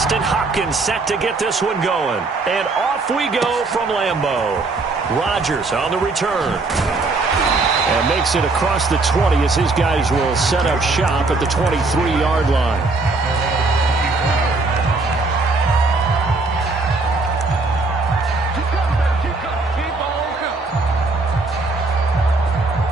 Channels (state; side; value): quieter; left; 3.6 dB